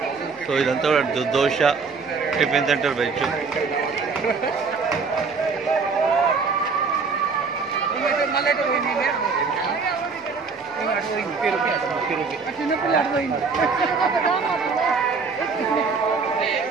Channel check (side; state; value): left; quieter; 4.8 dB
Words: సో ఇదంతా దోశ టిఫిన్ సెంటర్ వెజ్.